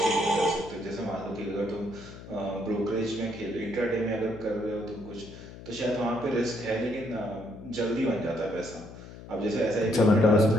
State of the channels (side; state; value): left; noise; hum, 15 dB below the sound